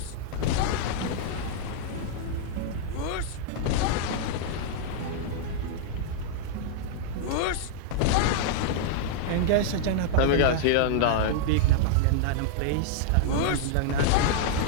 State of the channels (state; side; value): different; both; correlation -0.01